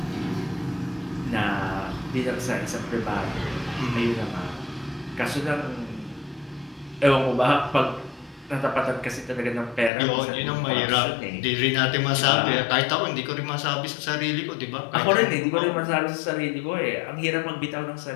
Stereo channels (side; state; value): right; drops out; at 9.9 s